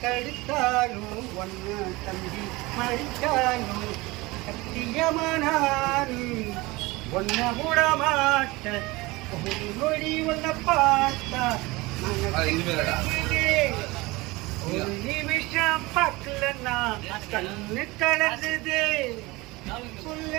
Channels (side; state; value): left; quieter; 22.2 dB